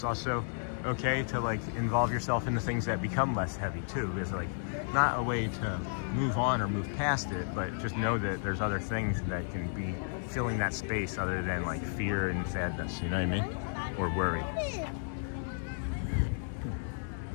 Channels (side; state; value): right; silent; digital silence